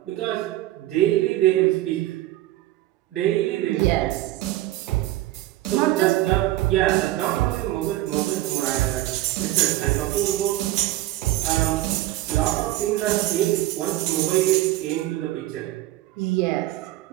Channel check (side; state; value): left; quieter; 15.8 dB